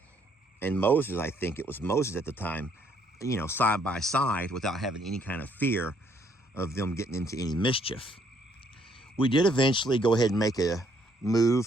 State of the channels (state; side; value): normal; both; correlation 0.68